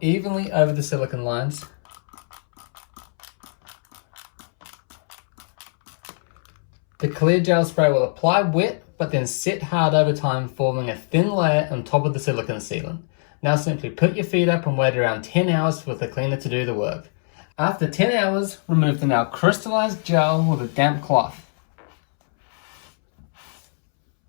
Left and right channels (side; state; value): right; silent; 64 dB below the other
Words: over the silicone lines. The clear gel spray will apply wet, but then set hard over time, forming a thin layer on top of the silicone sealant. Now simply put your feet up and wait around 10 hours for the cleaner to do the work. After 10 hours, remove the now crystallized gel with a damp cloth.